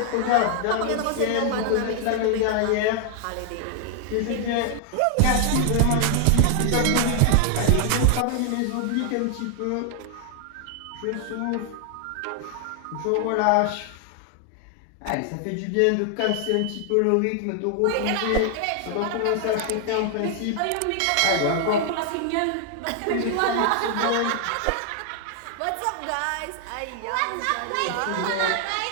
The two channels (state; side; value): different; both; correlation 0.00